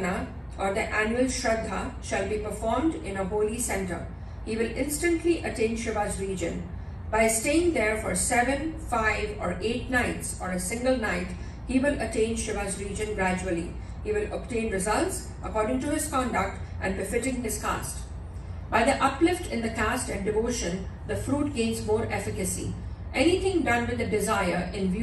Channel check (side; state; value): both; identical; correlation 1.00